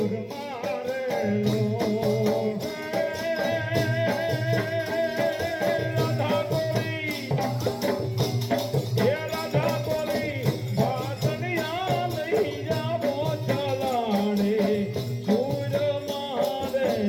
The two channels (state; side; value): identical; both; correlation 1.00